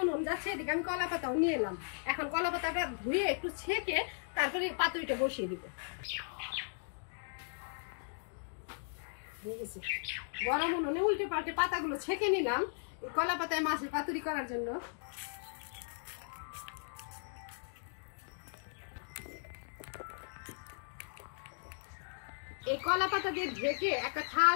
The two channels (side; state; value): right; silent; digital silence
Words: উনুন যাচ্ছে, এদিকে আমি কলা পাতাও নিয়ে এলাম। এখন কলা পাতাটা ধুয়ে একটু ছেঁকে তারপরে পাতুরিটা বসিয়ে দিব। গরম উনুনে উল্টে পাল্টে পাতাগুলো ছেঁকে নিলাম কলা পাতায় মাছের পাতুরি করার জন্য। এই কলা পাতা দিয়ে ঢেকে একটা থাল